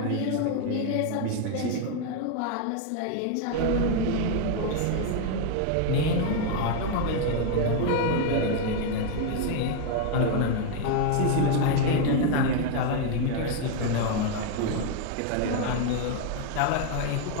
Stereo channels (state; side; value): different; both; correlation 0.01